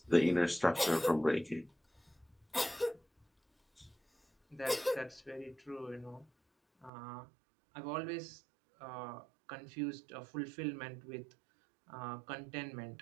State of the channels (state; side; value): drops out; left; at 6.9 s